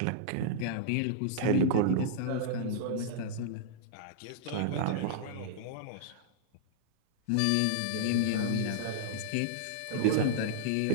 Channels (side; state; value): both; different; correlation -0.02